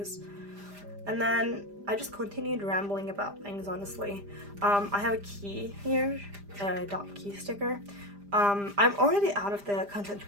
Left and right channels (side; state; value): left; late; 5.0 ms